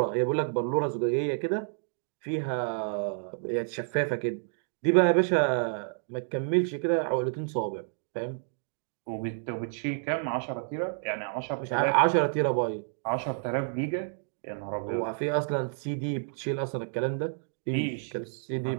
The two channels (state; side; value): silent; left; digital silence